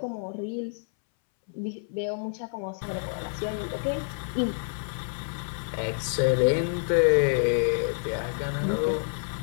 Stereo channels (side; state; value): right; silent; 59 dB below the other